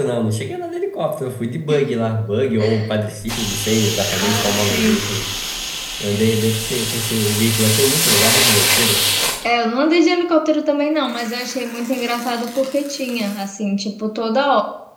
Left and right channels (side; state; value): both; identical; correlation 1.00